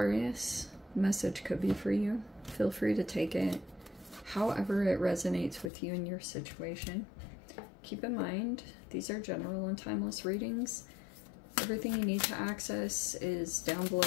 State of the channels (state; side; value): drops out; right; at 5.7 s